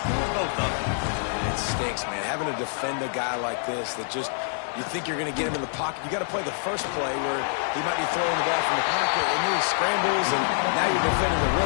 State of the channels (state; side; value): silent; right; digital silence